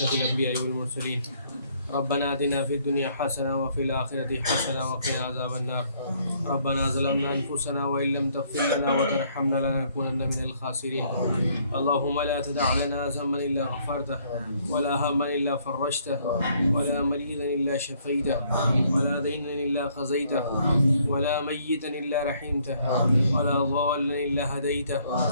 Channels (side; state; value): both; inverted; correlation -0.65